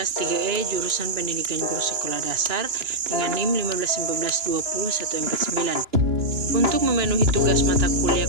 3E jurusan Pendidikan Guru Sekolah Dasar dengan NIM 1512149. Untuk memenuhi tugas mata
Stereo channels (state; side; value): late; left; 2.9 ms